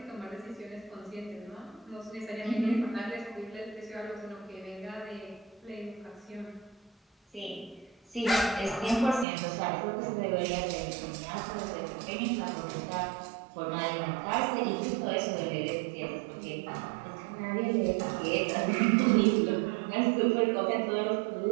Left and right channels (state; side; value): drops out; left; at 9.2 s